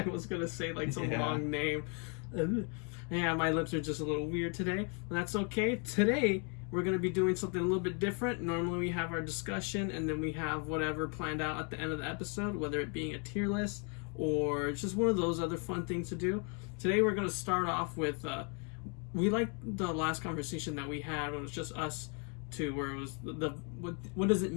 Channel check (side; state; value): right; quieter; 37.2 dB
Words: was going to say like some long name. Yeah, my lips are just a little weird today, but that's okay. Today, we're going to be doing something a little bit different. Normally, we have our discussion, and then we have whatever planned out at the end of the episode, whether it being a tier list or just one of those other fun things to do. Today, we're going to start off with, we liked the last conversation that we had when it was just us to where it was what does it